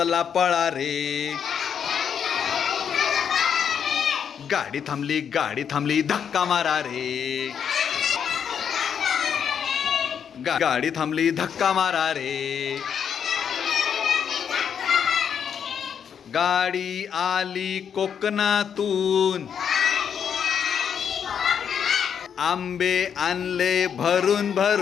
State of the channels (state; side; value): quieter; right; 7.8 dB